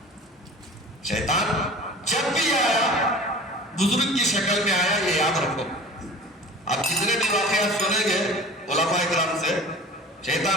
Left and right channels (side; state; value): both; normal; correlation 0.41